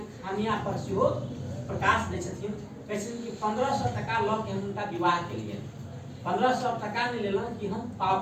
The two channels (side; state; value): both; identical; correlation 1.00